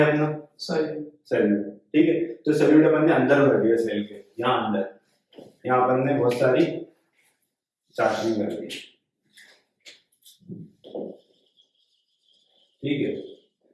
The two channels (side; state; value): both; identical; correlation 1.00